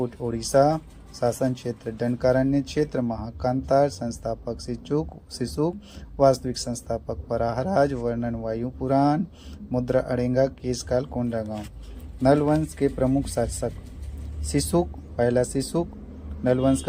उड़ीसा। शासन क्षेत्र दंडकारण्य क्षेत्र, महाकांतार। संस्थापक शिशुक, वास्तविक संस्थापक वराहराज। वर्णन वायु पुराण। मुद्रा अड़ेंगा, केशकाल कोंडागांव। नलवंश के प्रमुख शासक शिशुक, पहला शिशुक नलवंश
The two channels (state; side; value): identical; both; correlation 1.00